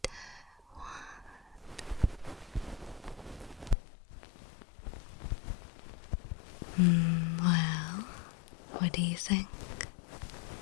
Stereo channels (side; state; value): right; drops out; at 3.8 s